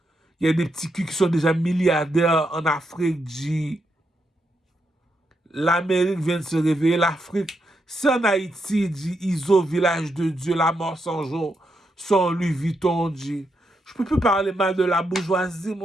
Il y a des petits culs qui sont déjà milliardaires en Afrique. L'Amérique vient de se réveiller. L'Afrique, c'est en Haïti, ISO, village de Dieu, la mort sans jour, son Louis Vuitton. Je peux plus parler mal de la bourgeoisie,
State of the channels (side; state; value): both; normal; correlation 0.81